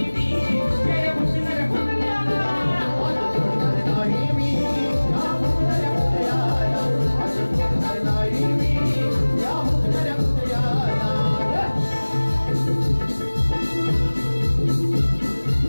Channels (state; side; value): inverted; both; correlation -1.00